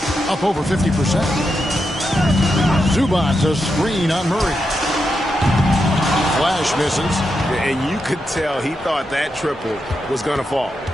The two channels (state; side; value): normal; both; correlation 0.85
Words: Up over 50%. Zubac a screen on Murray. Flash misses. And you could tell he thought that triple was going to fall.